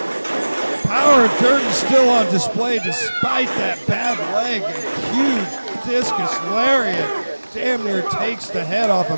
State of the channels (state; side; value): inverted; both; correlation -1.00